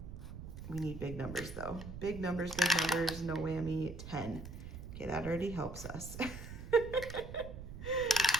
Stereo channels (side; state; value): right; noise; rumble, 10 dB below the sound